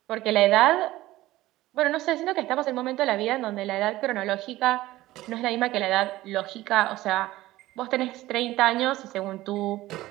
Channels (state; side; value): quieter; left; 16.7 dB